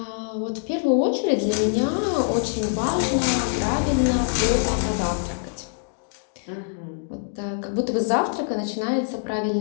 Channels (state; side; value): silent; right; digital silence